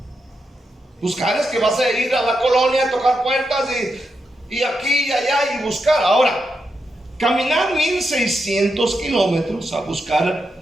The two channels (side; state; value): both; normal; correlation 0.85